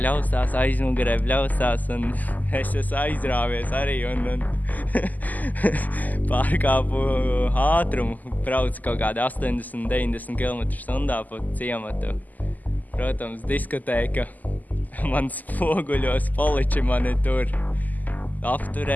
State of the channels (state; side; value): late; right; 0.081 ms